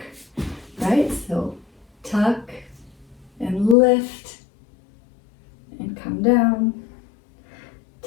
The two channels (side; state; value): right; drops out; at 3.8 s